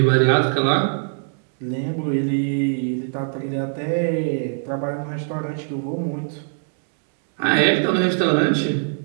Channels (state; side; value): silent; left; digital silence